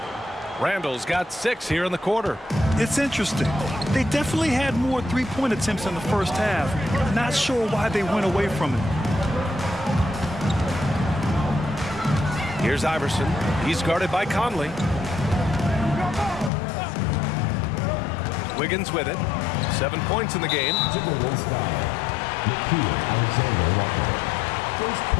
Randall's got 6 here in the quarter. It's interesting. They definitely had more three-point attempts in the first half. Not sure why they went away from it. Here's Iverson. He's guarded by Conley. Wiggins with it. 7 points in the game. Timberwolves foul. Alexander Walker. First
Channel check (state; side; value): drops out; right; at 16.5 s